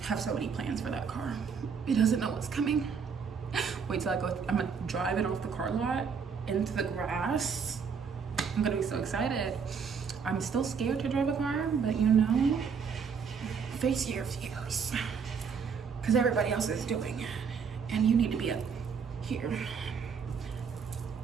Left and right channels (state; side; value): quieter; left; 6.1 dB